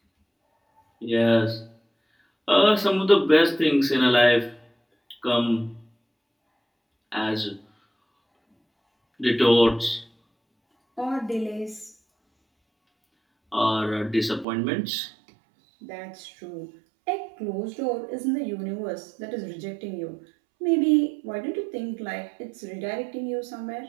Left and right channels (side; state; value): left; drops out; at 14.5 s